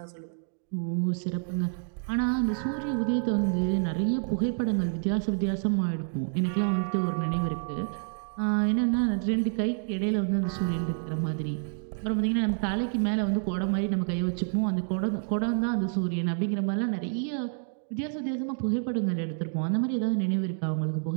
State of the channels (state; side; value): silent; left; digital silence